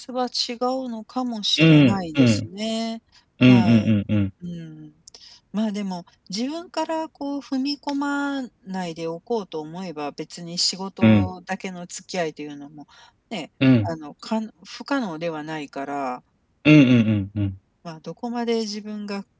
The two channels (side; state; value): both; identical; correlation 1.00